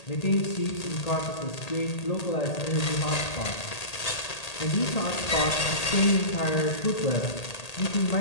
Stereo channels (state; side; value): late; right; 1.8 ms